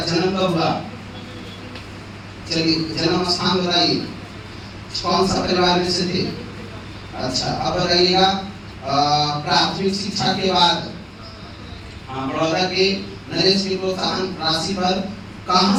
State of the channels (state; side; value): identical; both; correlation 1.00